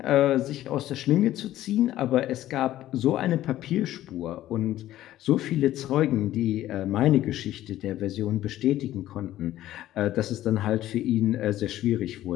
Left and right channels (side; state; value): right; quieter; 13.9 dB